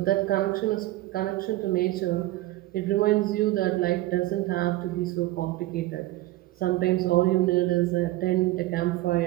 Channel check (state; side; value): quieter; left; 17.4 dB